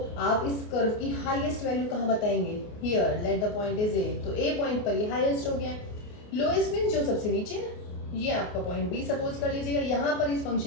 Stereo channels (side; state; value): right; late; 28 ms